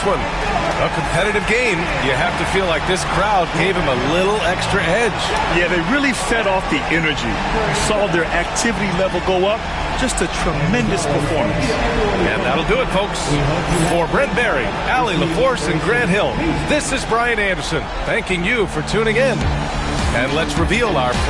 one. A competitive game. You have to feel like this crowd gave him a little extra edge. Yeah, they really fed off the energy. You saw their activity level go up. Just a tremendous performance. And that'll do it, folks. For Brent Barry, Allie LaForce, and Grant Hill, this is Brian Anderson thanking you for tuning in. And let's reveal our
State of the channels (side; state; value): both; identical; correlation 1.00